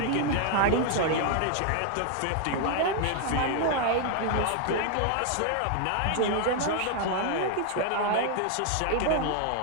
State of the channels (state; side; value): different; both; correlation 0.00